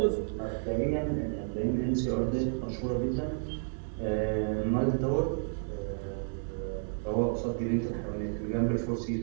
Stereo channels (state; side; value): silent; left; 57 dB below the other